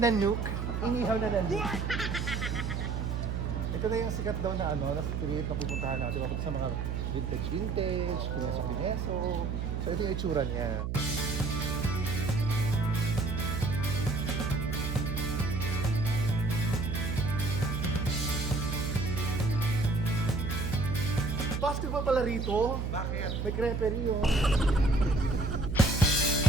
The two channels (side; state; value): right; noise; hum, 2 dB below the sound